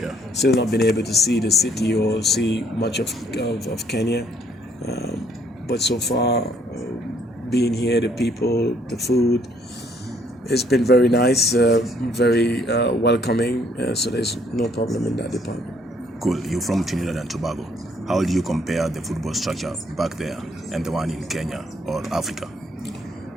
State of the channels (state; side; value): normal; both; correlation 0.65